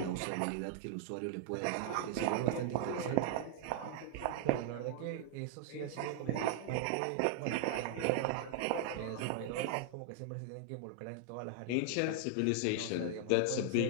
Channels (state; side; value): different; both; correlation 0.00